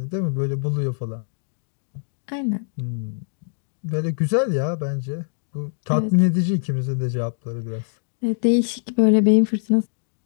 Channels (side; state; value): right; silent; digital silence